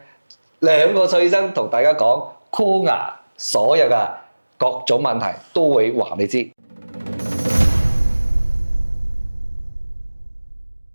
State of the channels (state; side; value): inverted; both; correlation -1.00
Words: 2個蔡醫生同大家講箍牙所有嘅各種問題都會話你知。